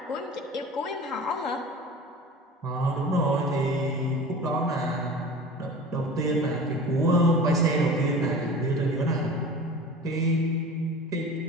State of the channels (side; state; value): both; normal; correlation 0.38